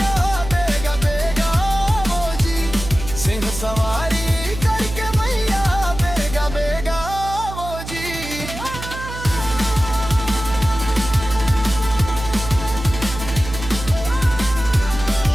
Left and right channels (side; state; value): right; noise; hum, 10 dB below the sound